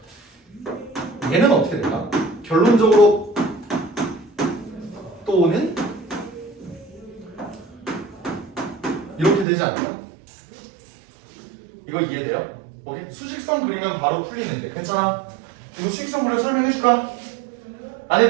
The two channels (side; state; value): left; drops out; at 9.5 s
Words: 얘는 어떻게 될까? 결론적으로 또는 이렇게 되지 않을까? 이거 이해돼요? 오케이? 수직선 그리면 바로 풀리는데 괜찮아? 이거 수직선 그려 설명해줄까? 안